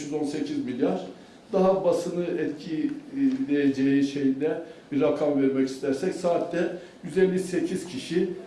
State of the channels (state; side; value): identical; both; correlation 1.00